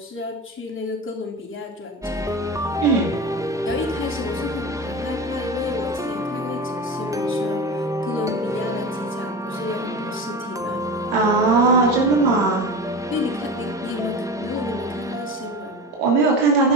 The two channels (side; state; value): both; normal; correlation 0.29